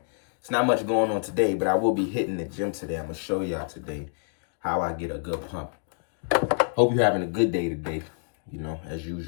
It's not much going on today, but I will be hitting the gym today. I'm going to show y'all today how I get a good pump. Hope you're having a good day today, you know, as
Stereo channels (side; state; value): right; silent; digital silence